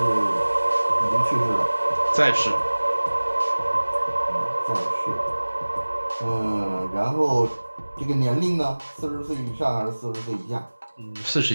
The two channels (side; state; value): both; inverted; correlation -1.00